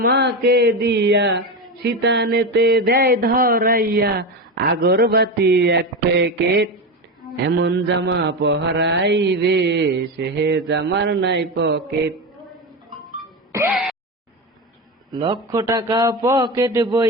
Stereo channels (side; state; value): both; normal; correlation 0.18